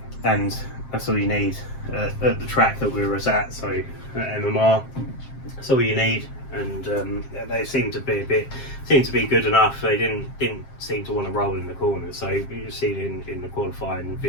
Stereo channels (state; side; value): late; right; 7.5 ms